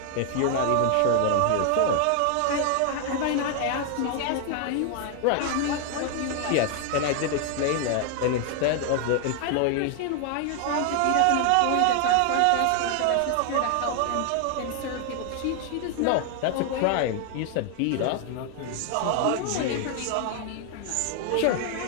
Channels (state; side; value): different; both; correlation 0.00